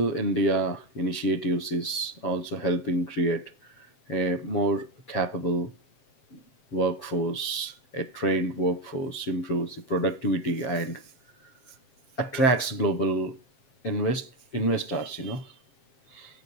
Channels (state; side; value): late; right; 7.6 ms